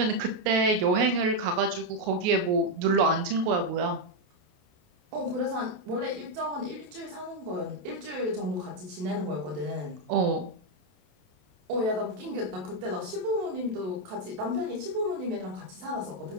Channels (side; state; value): left; late; 27 ms